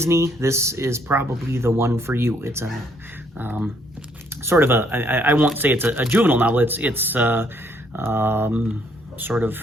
this is probably the one for you. It's a sort of a, I won't say it's a juvenile novel. It's sort of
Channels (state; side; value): normal; both; correlation 0.68